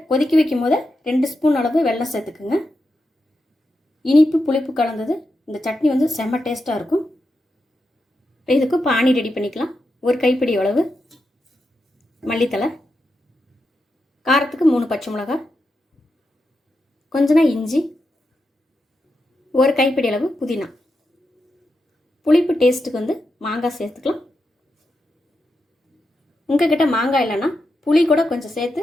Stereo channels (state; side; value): normal; both; correlation 0.87